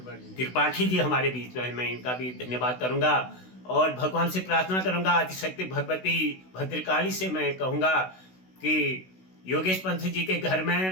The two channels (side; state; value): right; late; 16 ms